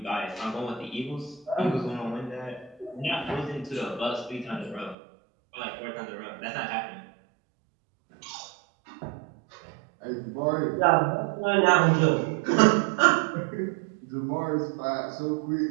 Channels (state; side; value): drops out; left; at 5.0 s